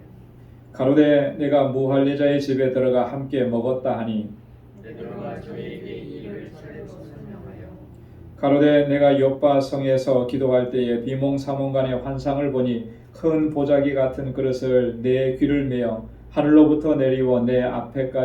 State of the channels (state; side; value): identical; both; correlation 1.00